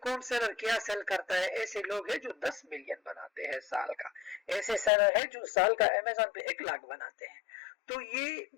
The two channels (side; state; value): right; drops out; at 4.9 s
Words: कौन सेलर क्या सेल करता है। ऐसे लोग हैं जो 10 मिलियन बनाते हैं साल का, ऐसे सेलर है जो साल का अमेज़न पे 1 लाख बनाते हैं। तो ये